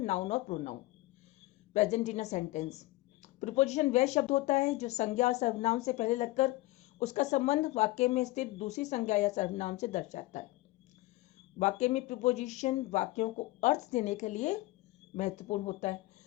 or pronoun present in a sentence. Preposition वह शब्द होता है जो संज्ञा और सर्वनाम से पहले लगकर उसका संबंध वाक्य में स्थित दूसरी संज्ञा या सर्वनाम से दर्शाता है। वाक्य में प्रीपोजिशन वाक्यों को अर्थ देने के लिए महत्वपूर्ण होता है।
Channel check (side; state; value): right; quieter; 19.5 dB